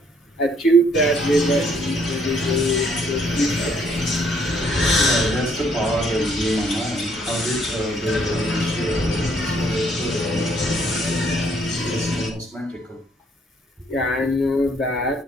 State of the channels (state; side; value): normal; both; correlation 0.66